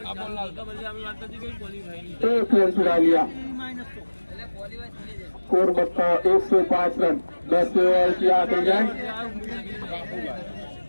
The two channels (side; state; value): both; inverted; correlation -1.00